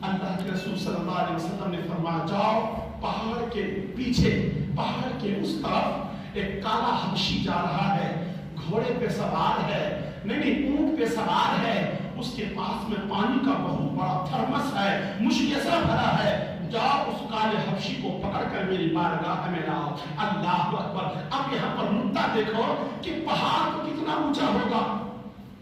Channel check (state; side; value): identical; both; correlation 1.00